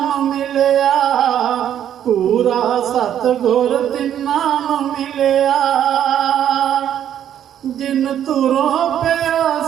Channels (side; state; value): left; quieter; 10.2 dB